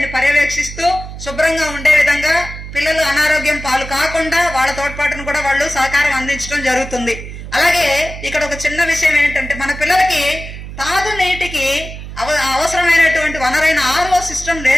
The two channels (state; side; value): noise; right; hum, 11 dB below the sound